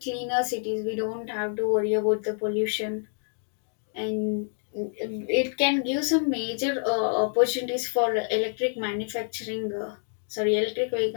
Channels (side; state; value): right; silent; digital silence